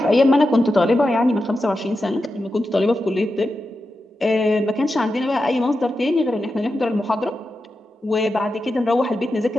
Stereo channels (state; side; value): normal; both; correlation 0.90